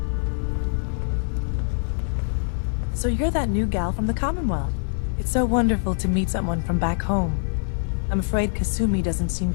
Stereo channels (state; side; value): silent; right; 60 dB below the other